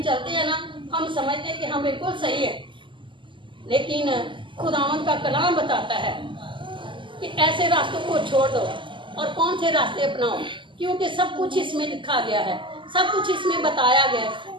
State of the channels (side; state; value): left; late; 0.24 ms